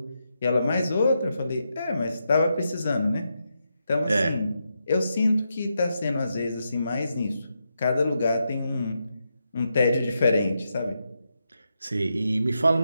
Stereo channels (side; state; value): both; inverted; correlation -0.84